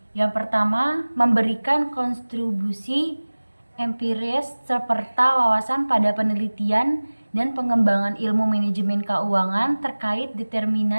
Yang pertama, memberikan kontribusi empiris serta wawasan pada penelitian dan pengembangan ilmu manajemen keuangan terkait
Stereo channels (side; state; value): both; inverted; correlation -1.00